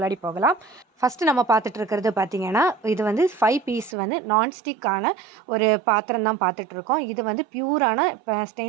போகலாம். ஃபஸ்ட்டு நம்ம பார்த்துட்டு இருக்கிறது பார்த்தீங்கன்னா, இது வந்து 5 பீஸ் வந்து நான்ஸ்டிக்கான ஒரு பாத்திரம் தான் பார்த்துட்ருக்கோம். இது வந்து பியூரான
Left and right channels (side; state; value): left; drops out; at 4.0 s